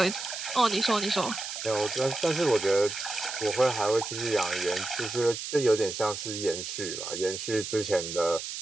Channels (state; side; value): noise; right; hiss, 7 dB below the sound